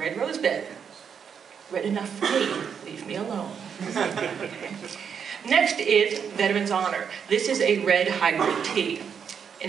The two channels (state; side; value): quieter; left; 7.2 dB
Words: rose bed. Red enough for me, leave me alone. Okay. Next is Veteran's Honor. This is a red hybrid tea,